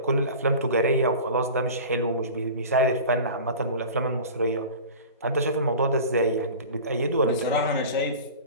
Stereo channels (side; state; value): both; inverted; correlation -0.36